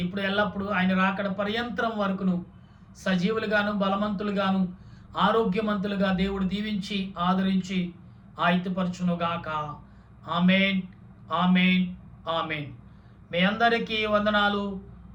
ఇప్పుడు ఎల్లప్పుడూ ఆయన రాకడ పర్యంతరం వరకును సజీవులుగాను, బలవంతులుగాను, ఆరోగ్యవంతులుగా దేవుడు దీవించి ఆదరించి ఆయుధపరచునుగాక. ఆమేన్, ఆమేన్, ఆమేన్. మీ అందరికీ వందనాలు.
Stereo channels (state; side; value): identical; both; correlation 1.00